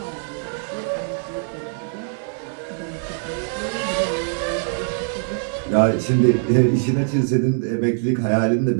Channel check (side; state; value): left; silent; 64 dB below the other